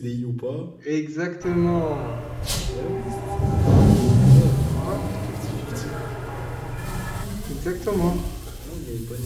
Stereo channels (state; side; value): identical; both; correlation 1.00